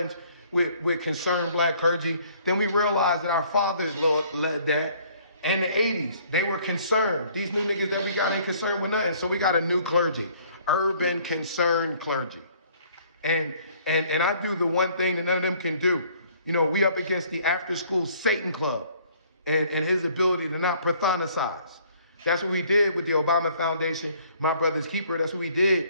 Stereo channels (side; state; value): both; inverted; correlation -0.59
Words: with concerned black clergy, then we realize that our fathers led that. And the 80s, they were concerned. These new niggas that we got ain't concerned with nothing. So we got a new clergy, urban concerned clergy. And I do the one thing that none of them can do. You know, we up against the after school Satan Club and his ability to not pathonicize. That's what we did with the Obama Foundation, My Brother's Keeper. That's what we